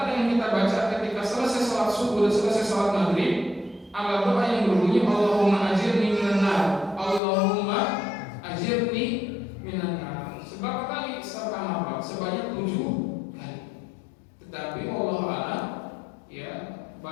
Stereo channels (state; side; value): drops out; right; at 7.2 s